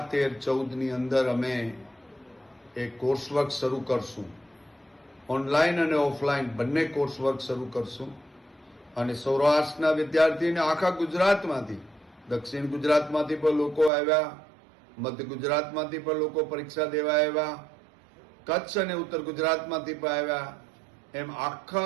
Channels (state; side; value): drops out; left; at 13.9 s